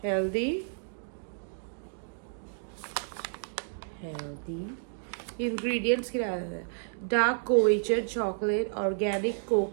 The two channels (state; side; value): silent; left; digital silence